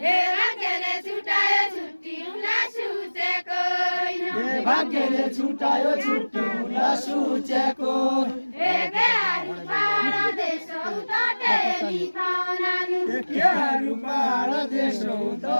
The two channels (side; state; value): both; inverted; correlation -1.00